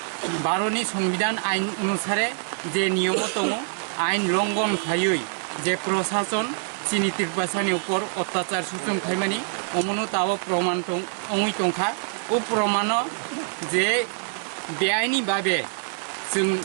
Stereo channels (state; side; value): silent; left; digital silence